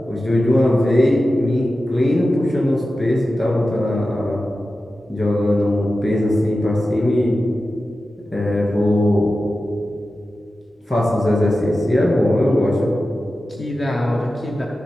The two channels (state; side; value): normal; both; correlation 0.93